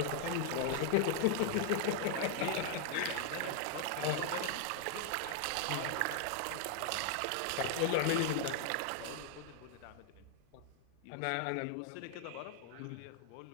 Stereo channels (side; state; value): both; different; correlation 0.00